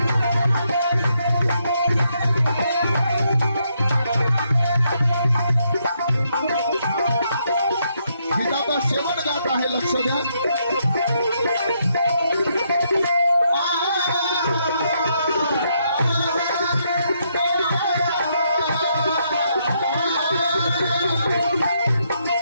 गीताचा शेवट गात आहे. लक्ष द्या.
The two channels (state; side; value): inverted; both; correlation -0.76